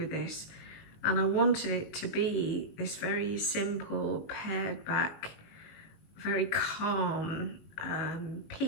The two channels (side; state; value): right; late; 18 ms